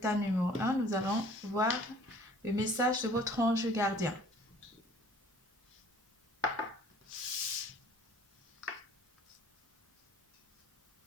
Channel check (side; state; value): both; normal; correlation 0.52